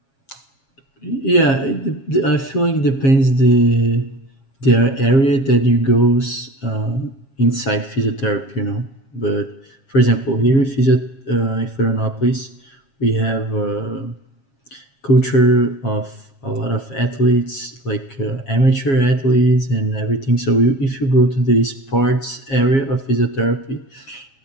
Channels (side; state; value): right; late; 7.4 ms